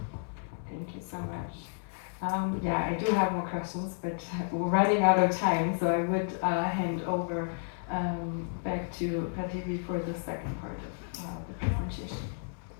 you so much. Yeah, I do have more questions, but we're running out of time, so I would hand over back to Prativi for the second part of the presentation.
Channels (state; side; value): silent; right; 57 dB below the other